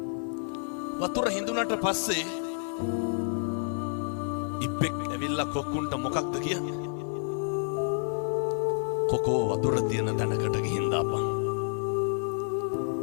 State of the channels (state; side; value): silent; right; digital silence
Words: වතුර හිඳුනට පස්සේ ඉබ්බෙක් ඇවිල්ලා කොක්කුන්ට මොකක්ද කියන්නේ? කොකෝ වතුර තියෙන තැනකට ගිහින් දාපන්.